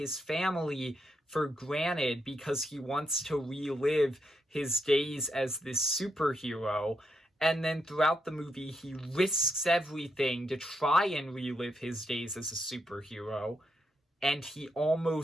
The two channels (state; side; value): normal; both; correlation 0.81